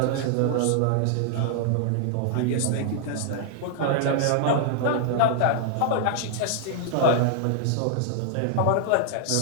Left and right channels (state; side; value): different; both; correlation -0.01